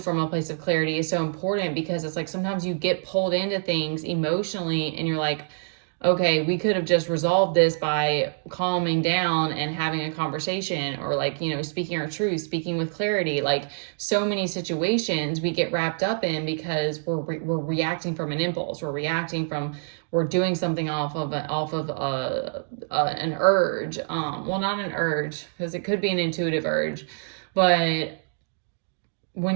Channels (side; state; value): left; silent; digital silence